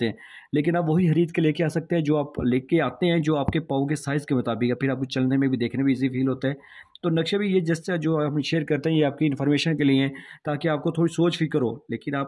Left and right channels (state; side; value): identical; both; correlation 1.00